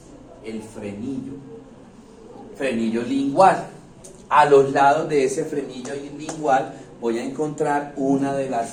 el frenillo lingual. A los lados de ese frenillo lingual voy a encontrar una de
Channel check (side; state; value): both; identical; correlation 1.00